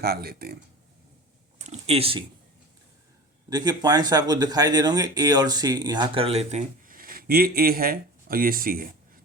लेते हैं। ए सी देखिए पॉइंट्स आपको दिखाई दे रहे होंगे, ए और सी यहाँ कर लेते हैं। ये ए है और ये सी है,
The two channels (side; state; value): both; normal; correlation 0.34